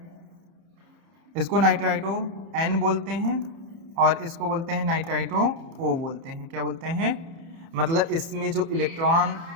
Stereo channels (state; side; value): late; left; 31 ms